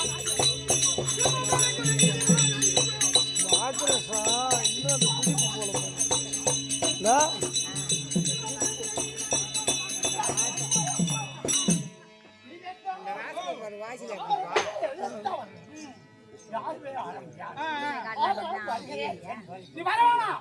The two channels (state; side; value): identical; both; correlation 1.00